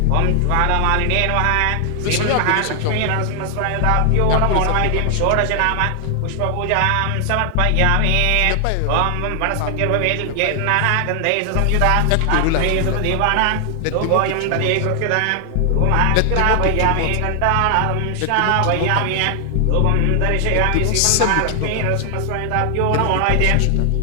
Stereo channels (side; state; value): both; different; correlation 0.00